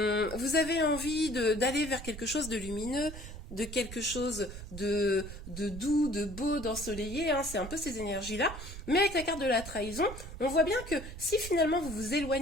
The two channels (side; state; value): right; noise; rumble, 11 dB below the sound